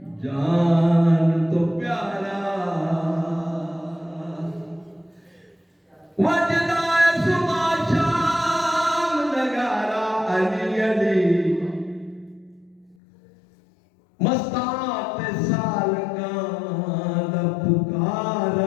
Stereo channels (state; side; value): drops out; right; at 13.0 s